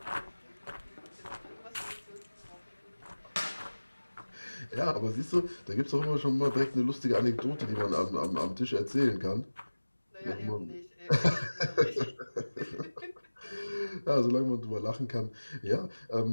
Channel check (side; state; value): both; inverted; correlation -1.00